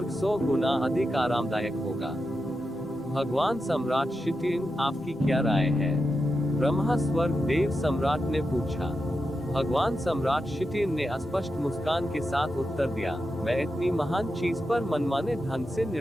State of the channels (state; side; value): normal; both; correlation 0.88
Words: 100 गुना अधिक आरामदायक होगा। भगवान सम्राट शिटिन, आपकी क्या राय है? ब्रह्मा स्वर्ग देव सम्राट ने पूछा। भगवान सम्राट शिटिन ने स्पष्ट मुस्कान के साथ उत्तर दिया, मैं इतनी महान चीज पर मनमाने ढंग से